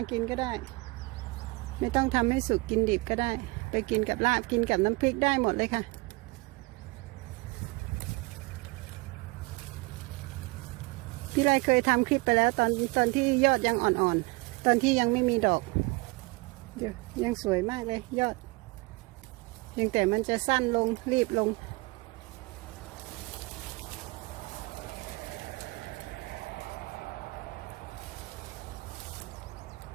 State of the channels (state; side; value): quieter; left; 25.4 dB